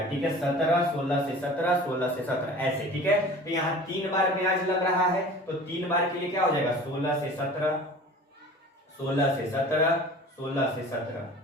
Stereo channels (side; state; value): both; normal; correlation 0.42